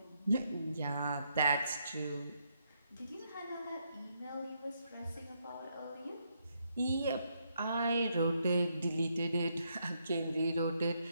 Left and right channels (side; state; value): both; inverted; correlation -0.77